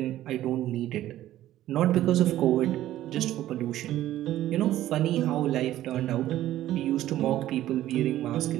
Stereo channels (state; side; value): quieter; left; 13.7 dB